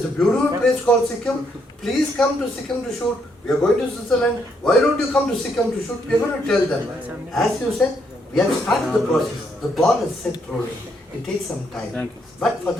a beautiful place called Sikkim. Please come to Sikkim to shoot. We are going to Switzerland. Why don't you come to Sikkim to shoot? We are going to tell them. As you said, we have started the process. The ball is set rolling. It takes some time. But for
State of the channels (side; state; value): both; normal; correlation 0.74